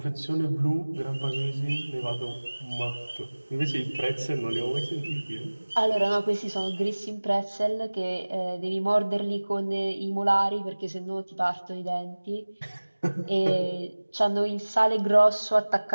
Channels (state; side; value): inverted; both; correlation -1.00